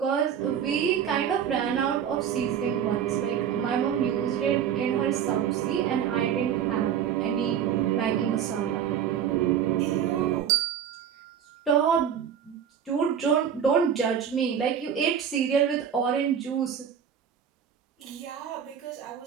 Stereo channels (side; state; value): left; quieter; 8.6 dB